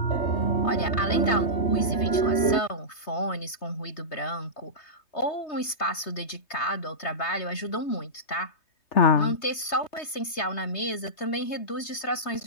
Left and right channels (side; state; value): right; late; 3.2 ms